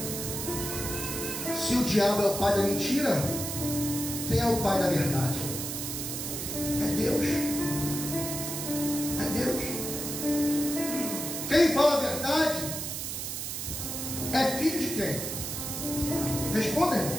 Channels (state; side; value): noise; right; hiss, 4 dB below the sound